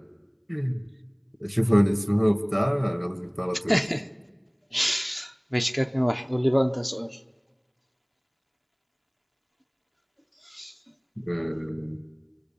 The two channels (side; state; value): both; identical; correlation 1.00